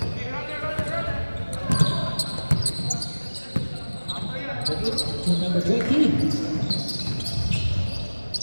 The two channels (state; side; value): inverted; both; correlation -1.00